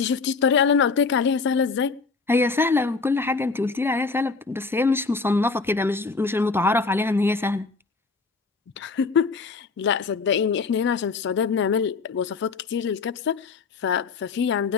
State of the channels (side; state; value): right; quieter; 4.4 dB